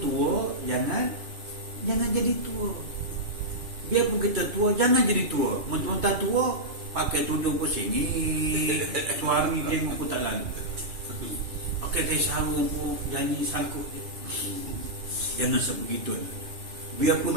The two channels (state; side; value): late; left; 2.6 ms